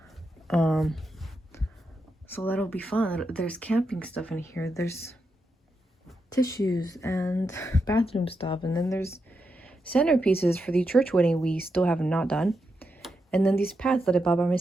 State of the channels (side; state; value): both; normal; correlation 0.85